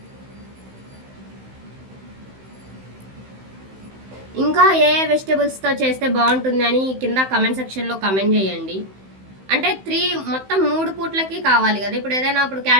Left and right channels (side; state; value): left; late; 15 ms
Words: ఇంకా ఏ వెజిటేబుల్స్తో చేస్తే బాగుంటుంది అని కింద కమెంట్ సెక్షన్లో కమెంట్ చేయండి. అంటే మొత్తం 3 పూట్లకి కావాలి కదా. ఇప్పుడు ఏదైనా ఇప్పుడు